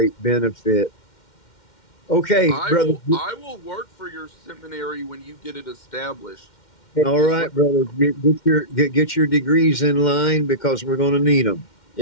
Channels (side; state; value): right; late; 2.1 ms